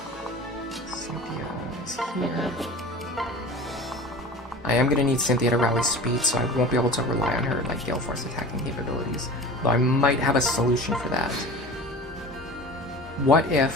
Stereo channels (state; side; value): normal; both; correlation 0.37